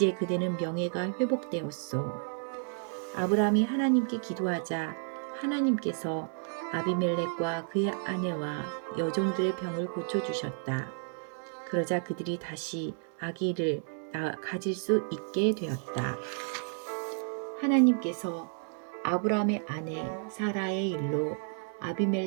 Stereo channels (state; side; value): silent; left; 57 dB below the other